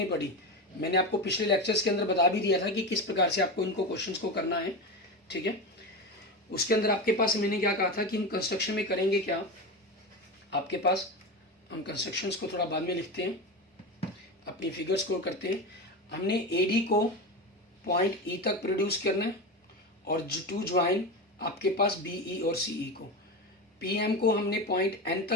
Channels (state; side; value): normal; both; correlation 0.21